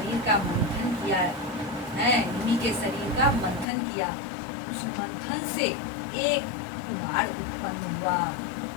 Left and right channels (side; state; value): right; drops out; at 3.7 s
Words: का मंथन किया है। निमि के शरीर का मंथन किया। उस मंथन से एक कुमार उत्पन्न हुआ।